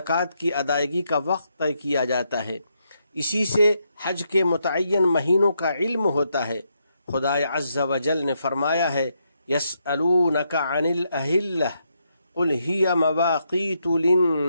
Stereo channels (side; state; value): both; inverted; correlation -0.79